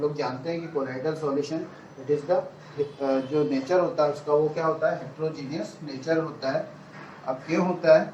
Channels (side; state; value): both; identical; correlation 1.00